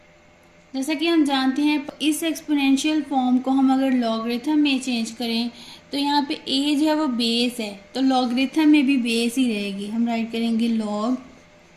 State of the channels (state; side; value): identical; both; correlation 1.00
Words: जैसा कि हम जानते हैं इस एक्सपोनेंशियल फॉर्म को हम अगर लॉगरिथम में चेंज करें तो यहाँ पे ए जो है वो बेस है, तो लॉगरिथम में भी बेस ही रहेगी। हम राइट करेंगे लॉग,